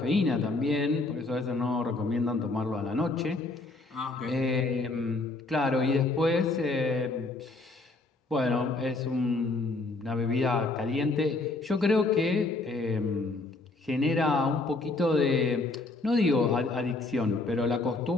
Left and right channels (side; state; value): right; quieter; 3.2 dB